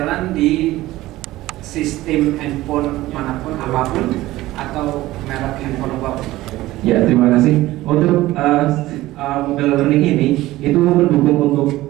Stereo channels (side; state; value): left; quieter; 16.9 dB